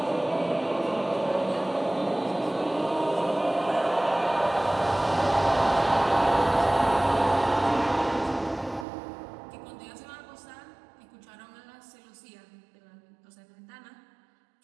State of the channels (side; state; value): left; drops out; at 8.8 s